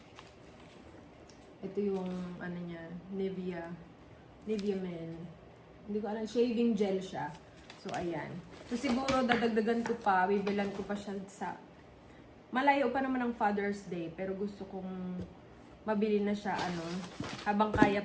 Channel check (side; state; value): both; identical; correlation 1.00